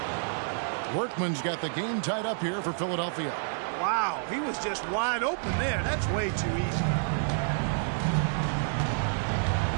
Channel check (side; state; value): left; silent; digital silence